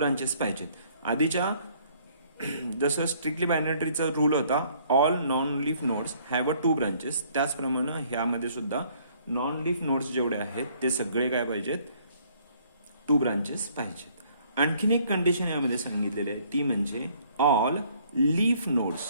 पाहिजेत. आधीच्या जसं स्ट्रिक्टली बायनरी ट्रीचा रूल होता, all non leaf nodes have a 2 branches, त्याचप्रमाणे ह्यामध्ये सुद्धा नॉन लीफ नोड्स जेवढे आहेत ते सगळे काय पाहिजेत, 2 ब्रांचेस पाहिजेत. आणखीन एक कंडिशन यामध्ये सांगितलेली आहे, ती म्हणजे all leaf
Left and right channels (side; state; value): both; inverted; correlation -0.62